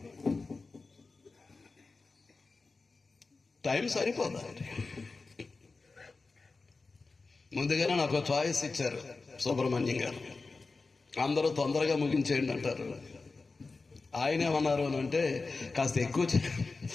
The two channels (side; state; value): right; quieter; 3.9 dB